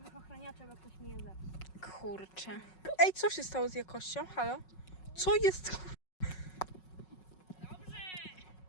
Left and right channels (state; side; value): late; right; 5.4 ms